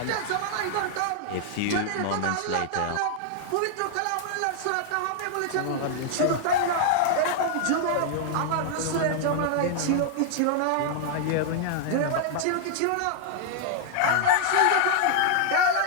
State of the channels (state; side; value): different; both; correlation -0.01